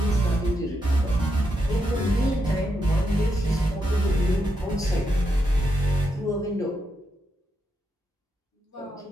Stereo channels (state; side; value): normal; both; correlation 0.83